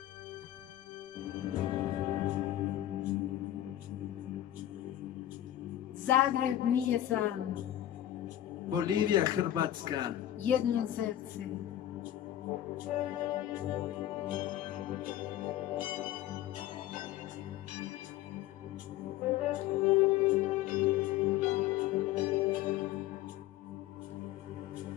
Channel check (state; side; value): quieter; right; 13.0 dB